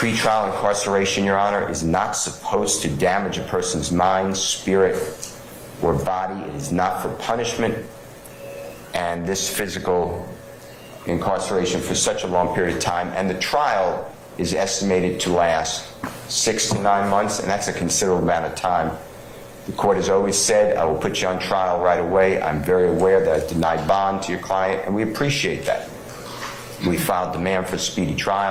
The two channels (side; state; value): both; identical; correlation 1.00